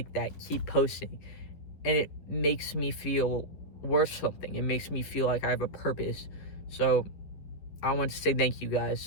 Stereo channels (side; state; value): right; late; 11 ms